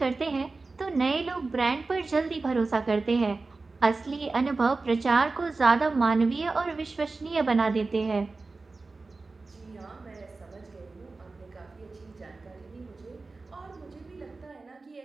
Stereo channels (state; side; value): quieter; left; 3.7 dB